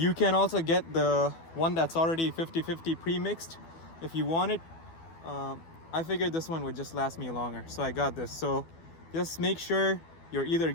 can also get the one that's already 50-50 pre-mixed if you want it. I figured this one would just last me longer, so I got this. So just make sure you're either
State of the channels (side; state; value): right; late; 12 ms